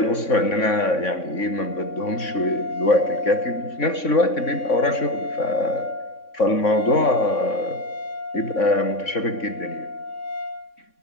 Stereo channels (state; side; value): late; right; 3.6 ms